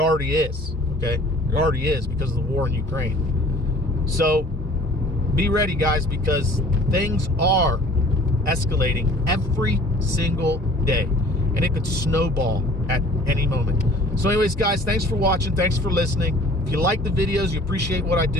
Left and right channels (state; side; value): normal; both; correlation 0.50